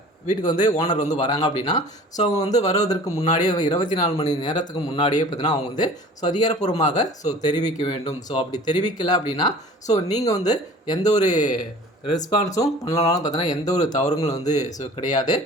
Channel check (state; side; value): normal; both; correlation 0.45